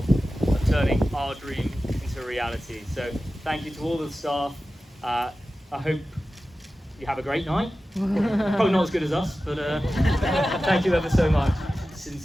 of turning our dream into a reality. So thank you to all the staff. I hope you have a great night. Probably not as good as us, but thank you ever so much.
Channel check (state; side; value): normal; both; correlation 0.94